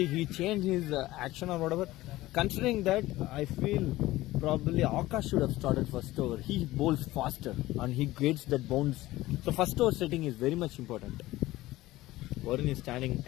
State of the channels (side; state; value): right; quieter; 17.3 dB